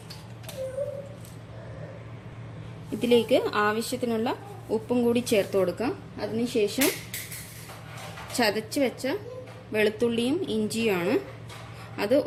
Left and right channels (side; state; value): both; identical; correlation 1.00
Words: ഇതിലേക്ക് ആവശ്യത്തിനുള്ള ഉപ്പും കൂടി ചേർത്ത് കൊടുക്കാം. അതിനുശേഷം ചതച്ച് വെച്ച വെളുത്തുള്ളിയും ഇഞ്ചിയുമാണ്. അത്